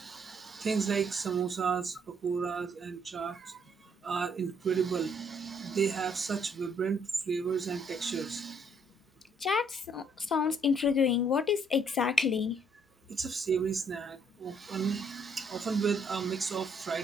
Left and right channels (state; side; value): normal; both; correlation 0.68